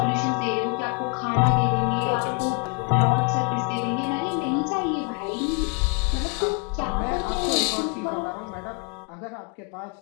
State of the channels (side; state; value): right; quieter; 35.0 dB